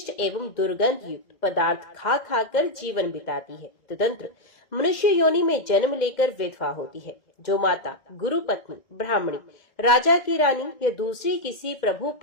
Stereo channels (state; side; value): late; right; 2.0 ms